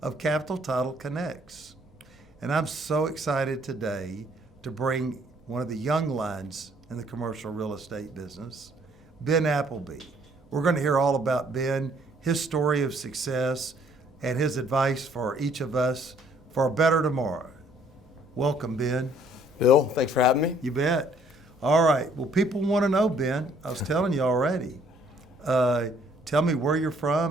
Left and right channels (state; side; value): normal; both; correlation 0.63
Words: of Capital Title Connects. And I'm so excited today to bring one of the young lions in the commercial real estate business, Ben Appleby. We're going to hear all about Ben, his story of success, and his advice for each of us for a better tomorrow. Welcome, Ben. Bill, thanks for having me. You bet. All right. Well, people want to know, Ben. I was telling you already. Tell me where you're